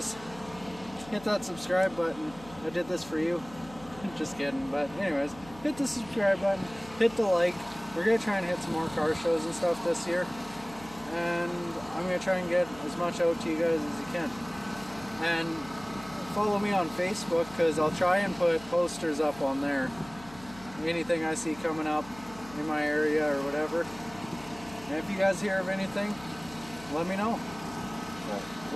hit that subscribe button. I did this for you. Just kidding. But anyways, hit the subscribe button. Hit the like. We're going to try and hit some more car shows and stuff this year. And I'm going to try and get as much out to you guys as you can. And follow me on Facebook because I'll try and put posters up on there. Anything I see coming up in my area or whatever. And if you guys hear of anything, let me know. But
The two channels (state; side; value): noise; left; hum, 20 dB below the sound